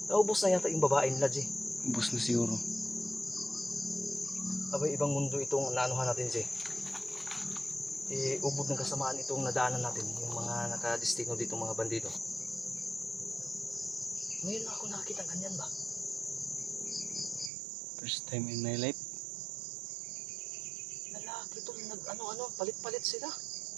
Naubos na yata yung babae nila, G. Ubus na siguro. Abay, ibang mundo itong naanuhan natin, G. Ubod ng kasamaan itong nadaanan natin, yung mga nakadestino dito, mga bandido. Ngayon na ako nakakita ganyan ba? First time in my life. Lalaki to, palit-palit sila.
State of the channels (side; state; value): left; drops out; at 17.5 s